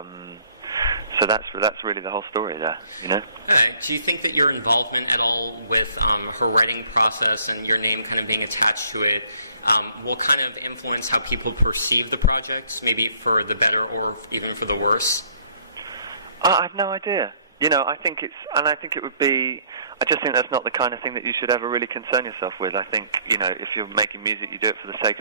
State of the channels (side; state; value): both; inverted; correlation -0.61